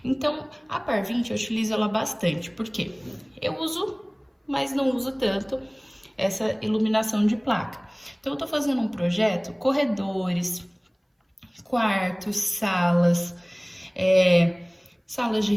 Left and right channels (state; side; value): identical; both; correlation 1.00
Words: Então, a par 20 eu utilizo ela bastante, porque eu uso, mas não uso tanto essa iluminação de placa. Então, eu tô fazendo um projeto, corredores, quartos, salas, salas de